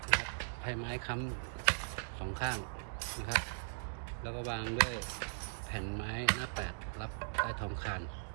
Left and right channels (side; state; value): left; silent; digital silence